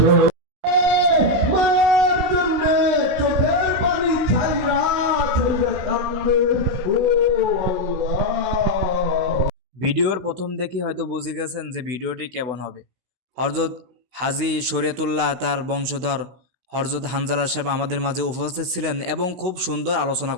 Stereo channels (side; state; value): left; late; 16 ms